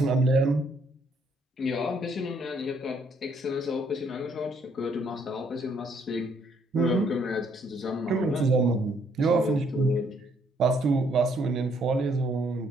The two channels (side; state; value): both; normal; correlation 0.68